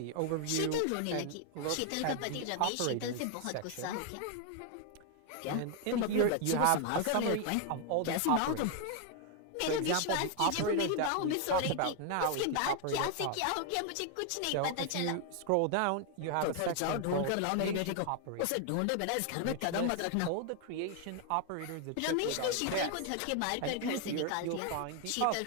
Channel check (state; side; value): different; both; correlation 0.00